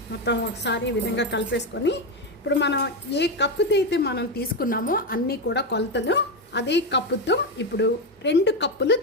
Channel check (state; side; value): normal; both; correlation 0.10